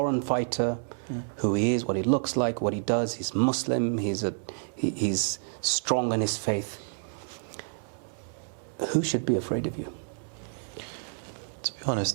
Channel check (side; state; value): left; silent; digital silence